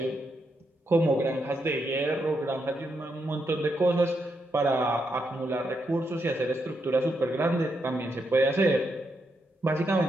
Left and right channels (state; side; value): normal; both; correlation 0.81